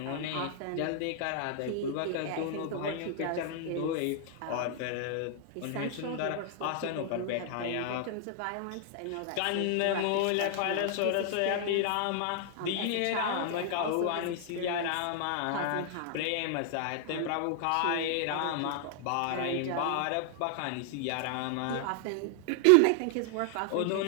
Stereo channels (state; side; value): different; both; correlation 0.00